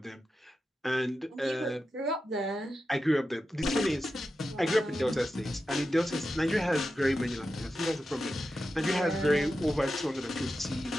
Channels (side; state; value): both; normal; correlation 0.91